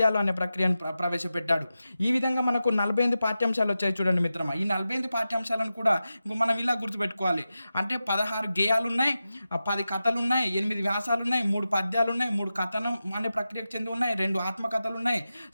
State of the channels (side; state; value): both; inverted; correlation -0.92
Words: అనే ప్రక్రియను ప్రవేశపెట్టాడు. ఈ విధంగా మనకు 48 పాఠ్యాంశాలు వచ్చాయి చూడండి మిత్రమా. ఈ 48 పాఠ్యాంశాలను కూడా మనం ఇలా గుర్తుపెట్టుకోవాలి. అంటే 16 గేయాలు ఉన్నాయి, 10 కథలు ఉన్నాయి, 8 వ్యాసాలు ఉన్నాయి, 3 పద్యాలు ఉన్నాయి, 3 కథనం అనే ప్రక్రియకు చెంది ఉన్నాయి, 2 ఆత్మకథలు ఉన్నాయి,